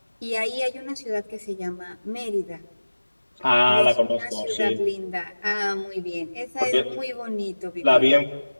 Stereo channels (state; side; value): inverted; both; correlation -1.00